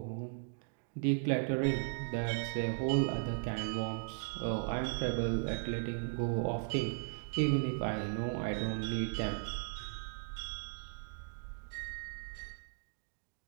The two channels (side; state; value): left; silent; digital silence